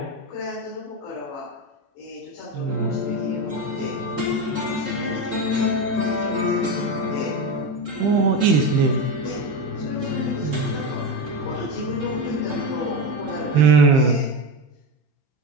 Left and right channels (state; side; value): normal; both; correlation 0.17